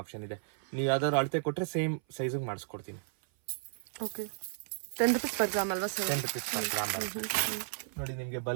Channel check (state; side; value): silent; left; 55 dB below the other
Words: ಆಪ್ಷನ್ ಇದೆ. ನೀವು ಯಾವ್ದಾದ್ರು ಅಳತೆ ಕೊಟ್ರೆ ಸೇಮ್ ಸೈಜ್ ಮಾಡಿಸ್ಕೊಡ್ತೀನಿ. ಓಕೆ 10 rupees per ಗ್ರಾಮ್ ಅಲ್ವಾ ಸರ್? 10 rupees per ಗ್ರಾಮ್ ಬರುತ್ತೆ ನೋಡಿ. ನಿಮ್ಗೆ